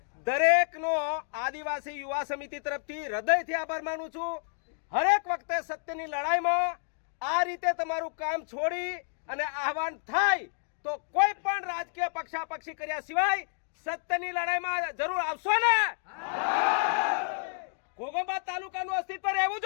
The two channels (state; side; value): silent; right; digital silence